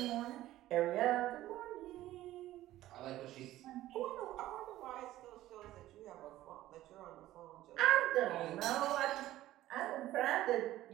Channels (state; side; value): quieter; left; 14.9 dB